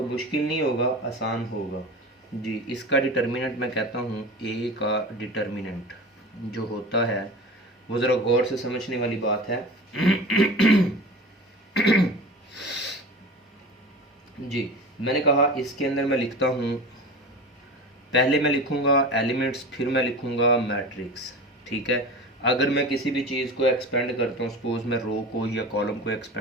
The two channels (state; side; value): normal; both; correlation 0.33